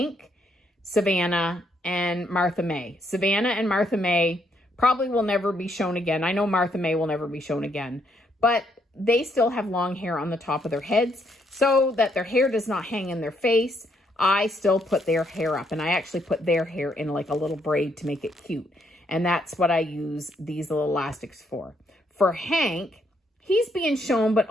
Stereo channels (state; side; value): normal; both; correlation 0.73